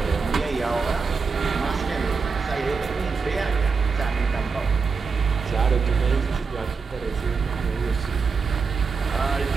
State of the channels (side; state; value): left; quieter; 5.1 dB